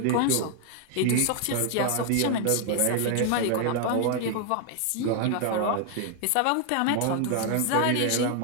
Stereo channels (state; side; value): different; both; correlation 0.00